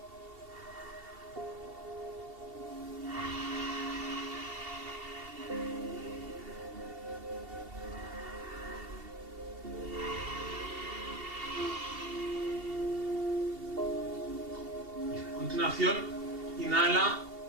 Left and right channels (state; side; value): late; left; 2.7 ms